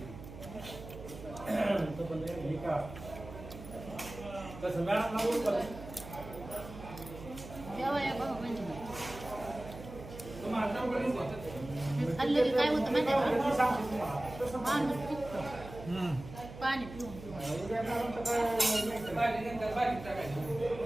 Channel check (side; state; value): right; noise; hum, 13 dB below the sound